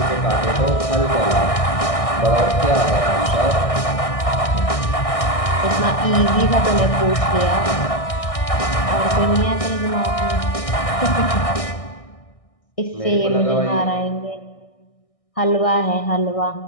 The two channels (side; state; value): right; late; 1.6 ms